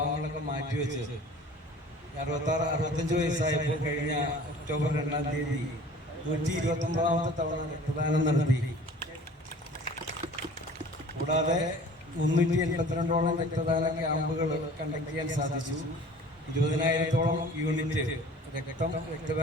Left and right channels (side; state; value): both; normal; correlation 0.46